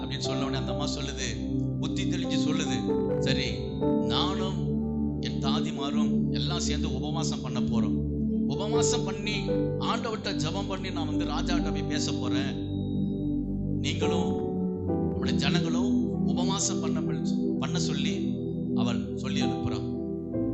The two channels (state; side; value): identical; both; correlation 1.00